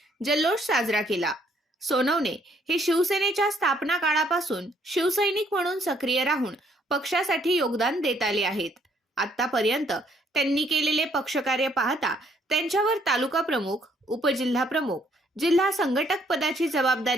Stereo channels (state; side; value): normal; both; correlation 0.66